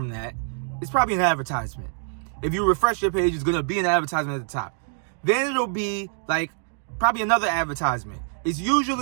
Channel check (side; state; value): left; silent; 62 dB below the other